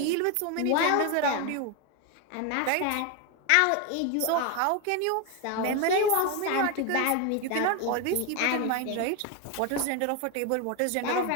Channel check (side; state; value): both; different; correlation 0.01